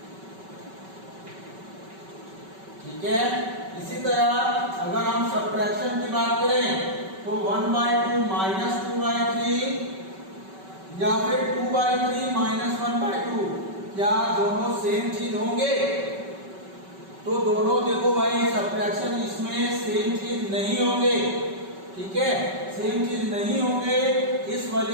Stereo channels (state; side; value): late; left; 5.3 ms